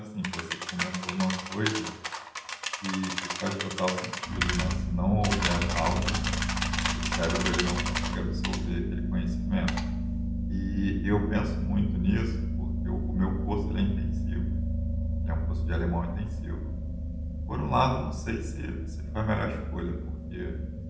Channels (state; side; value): identical; both; correlation 1.00